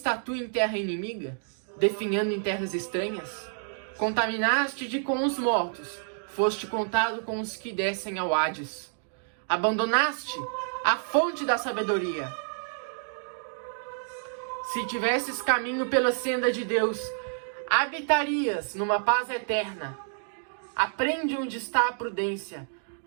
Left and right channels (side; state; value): left; silent; digital silence